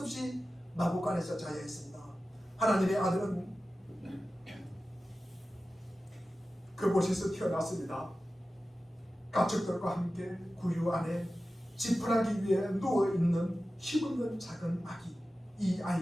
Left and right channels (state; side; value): normal; both; correlation 0.94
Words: 없이 마구간에서 자야 했습니다. 하나님의 아들은 그곳에서 태어났습니다. 가축들과 함께 구유 안에 지푸라기 위에 누워있는 힘없는 작은 아기, 이